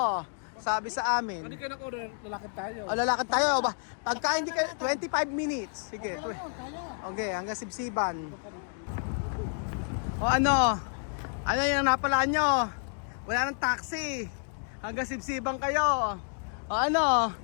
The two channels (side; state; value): right; silent; 58 dB below the other